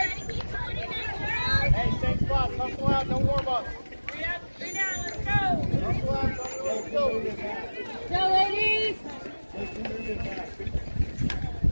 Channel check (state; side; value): inverted; both; correlation -1.00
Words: Hey, same spot. Don't go out. No warm up. 3 up, 3 down. Let's go. Don't go out. Let's go. Go, ladies.